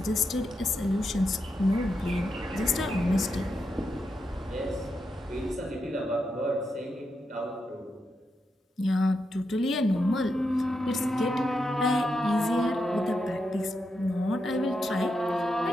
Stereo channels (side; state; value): both; normal; correlation 0.85